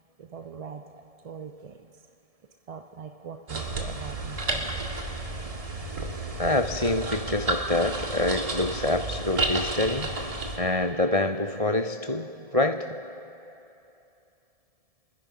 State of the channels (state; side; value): late; left; 1.7 ms